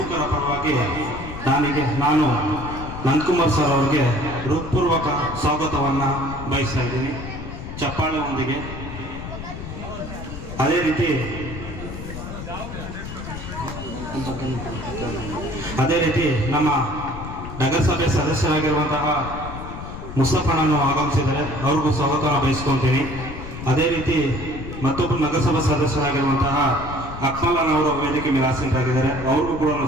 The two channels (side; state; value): left; noise; rumble, 10 dB below the sound